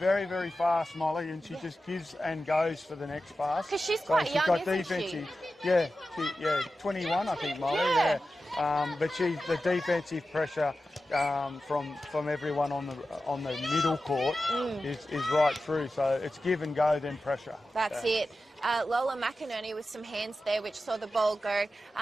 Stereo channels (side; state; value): both; normal; correlation 0.93